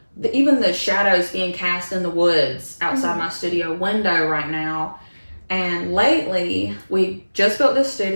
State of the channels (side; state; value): both; inverted; correlation -1.00